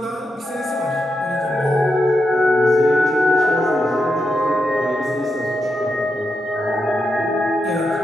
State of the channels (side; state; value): both; normal; correlation 0.85